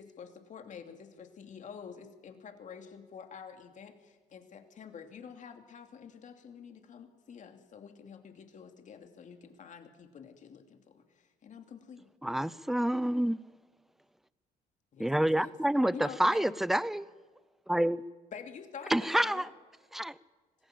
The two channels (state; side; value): normal; both; correlation 0.97